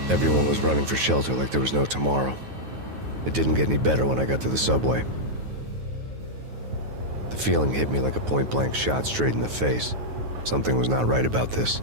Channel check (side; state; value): left; late; 9.3 ms